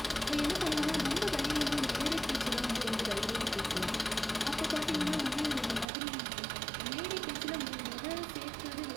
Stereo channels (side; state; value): left; drops out; at 5.9 s